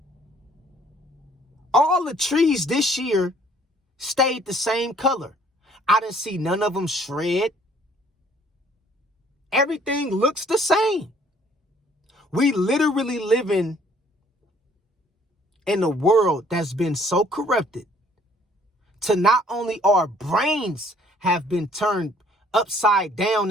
All the trees this year stayed the same color. I didn't see none of them shred. Everything looks the same. We literally living in a world that's been so corrupted to not only our brains have been turned upside down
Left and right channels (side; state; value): both; normal; correlation 0.60